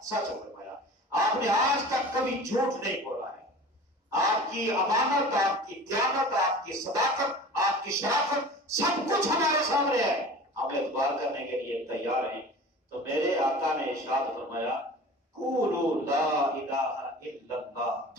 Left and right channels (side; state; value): both; normal; correlation 0.39